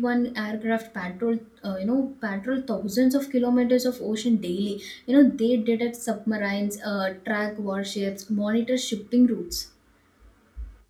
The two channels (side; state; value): both; identical; correlation 1.00